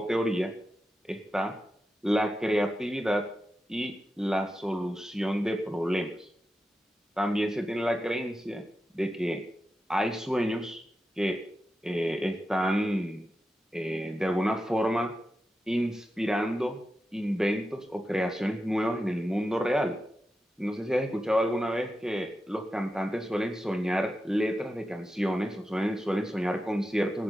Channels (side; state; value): both; normal; correlation 0.90